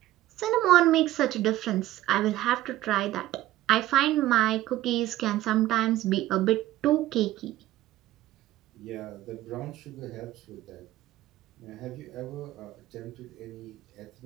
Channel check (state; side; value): quieter; left; 15.2 dB